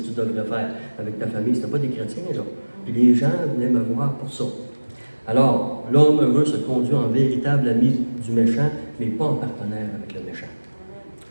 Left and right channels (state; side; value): inverted; both; correlation -1.00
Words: tu devrais faire avec ta famille. Ce n'était pas des chrétiens, là. Puis les gens venaient me voir pour ça. Alors, l'homme heureux se conduit en véritable ami du méchant, mais pas en partenaire avec le méchant.